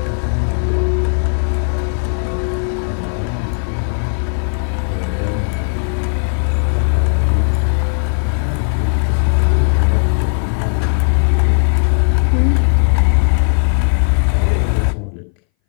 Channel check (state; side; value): silent; right; 63 dB below the other